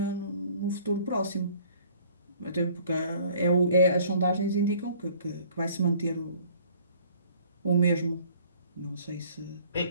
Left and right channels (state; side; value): inverted; both; correlation -0.55